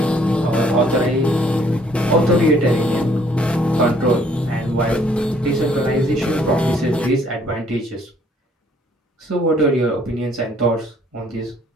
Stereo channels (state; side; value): normal; both; correlation 0.63